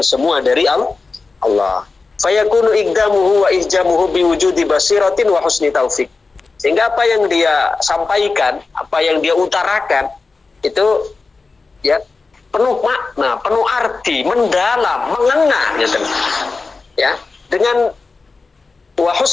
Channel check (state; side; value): quieter; right; 4.1 dB